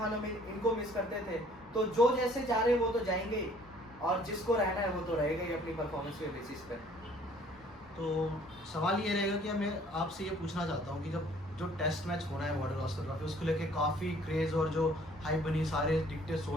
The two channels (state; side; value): normal; both; correlation 0.57